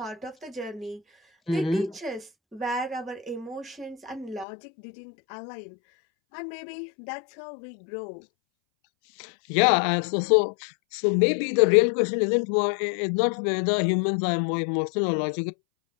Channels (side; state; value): right; drops out; at 4.5 s